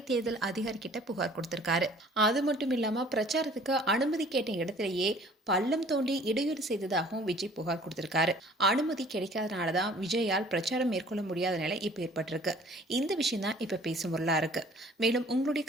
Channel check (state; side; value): normal; both; correlation 0.52